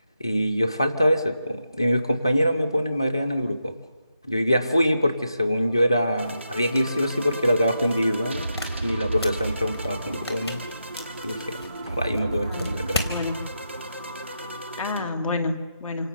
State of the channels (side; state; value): both; inverted; correlation -0.84